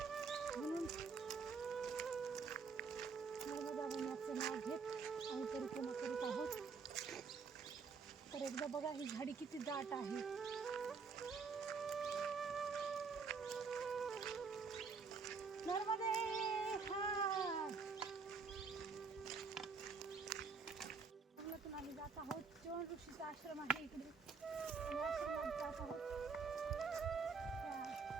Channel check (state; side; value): quieter; left; 5.0 dB